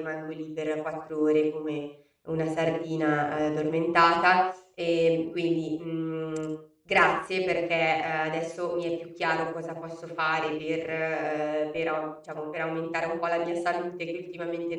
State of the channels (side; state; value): both; identical; correlation 1.00